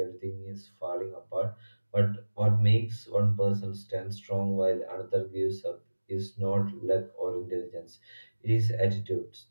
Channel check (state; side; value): inverted; both; correlation -1.00